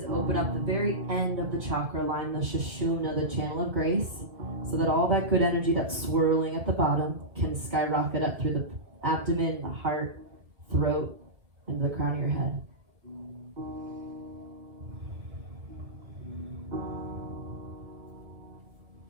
open up the very end of the chakra line, the Sushumna, the channel of grace, so that all that good energy that's swirling at the bottom can skyrocket up through the abdomen, the heart, throat, and the crown of your head.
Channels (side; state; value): left; late; 1.9 ms